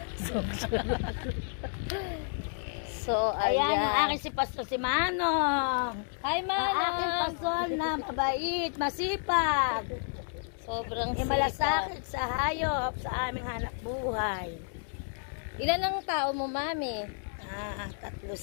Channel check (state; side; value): silent; right; digital silence